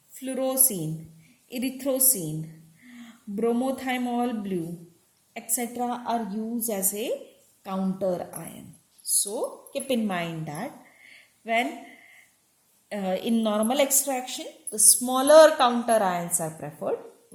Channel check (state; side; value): identical; both; correlation 1.00